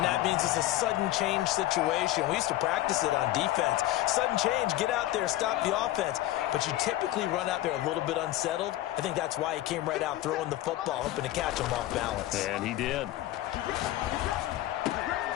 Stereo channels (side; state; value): right; quieter; 15.3 dB